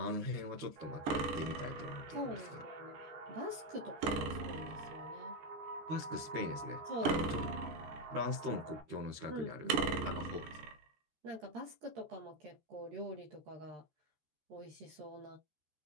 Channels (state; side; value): late; left; 14 ms